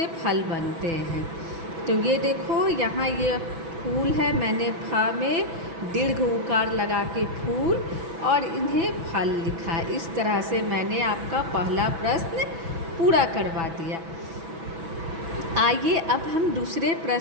फल बनते हैं। तो ये देखो यहाँ ये फूल है, मैंने फा में दीर्घ उकार लगा के फूल और इन्हें फल लिखा। इस तरह से मैंने आपका पहला प्रश्न पूरा करवा दिया। आइए अब हम दूसरे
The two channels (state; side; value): late; left; 6.1 ms